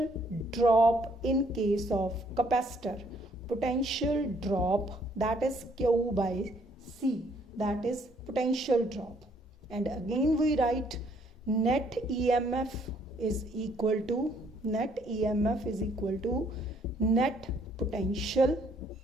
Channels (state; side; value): normal; both; correlation 0.66